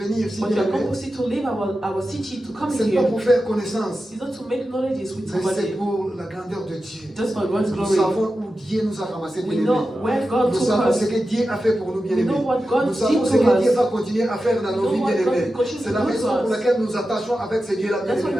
ici, But we bien are aimé. composed to leave our city to come C'est pas here. pour faire connaissance, It's not to make knowledges with mais c'est somebody, pour la grandeur de Dieu. just for God's Nous glory. savons où Dieu nous a ramassés, bien We aimé. know where God Nous took savons us. ce que Dieu a fait pour nous, bien We aimés. know what God Nous savons did ce to que Dieu us. va continuer à faire dans nos We vies, know bien what God aimés. will continue C'est to la do to raison pour us. laquelle nous attachons avec ce Dieu-là, bien That's why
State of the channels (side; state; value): both; normal; correlation 0.92